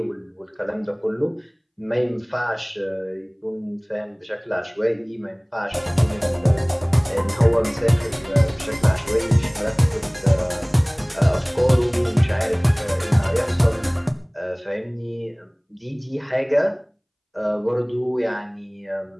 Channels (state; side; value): identical; both; correlation 1.00